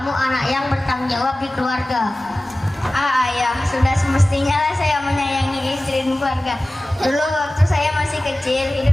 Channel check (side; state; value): both; normal; correlation 0.96